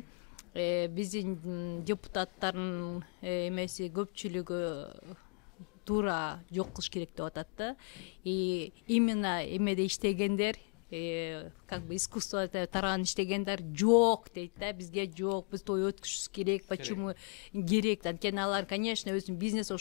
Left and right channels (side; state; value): right; quieter; 39.6 dB